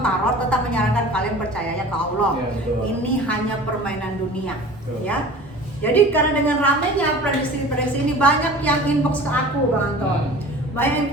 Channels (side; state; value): both; normal; correlation 0.41